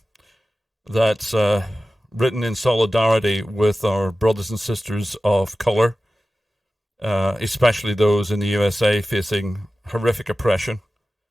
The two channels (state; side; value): normal; both; correlation 0.95